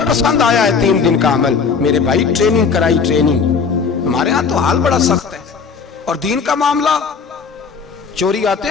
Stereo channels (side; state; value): right; quieter; 5.5 dB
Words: पसंद आया है 3 दिन का अमल। मेरे भाई ट्रेनिंग कराई, ट्रेनिंग। हमारे यहाँ तो हाल बड़ा सख्त है। और दीन का मामला, चोरी आते